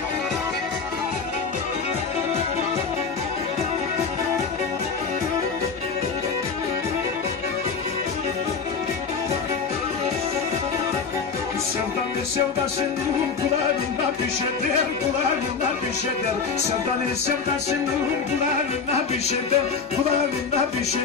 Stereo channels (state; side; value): quieter; right; 5.3 dB